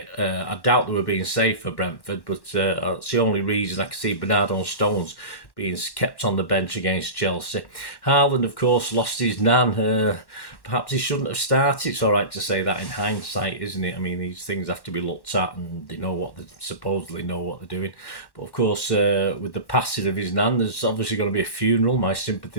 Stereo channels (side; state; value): right; late; 1.1 ms